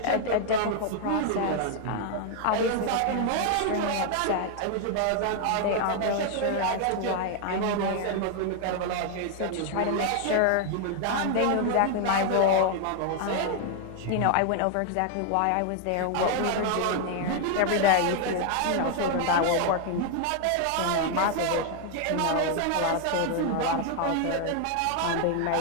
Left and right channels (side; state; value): both; different; correlation 0.00